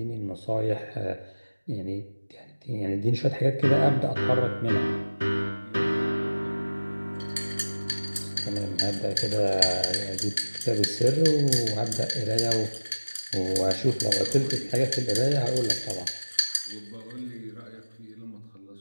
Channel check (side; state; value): both; inverted; correlation -1.00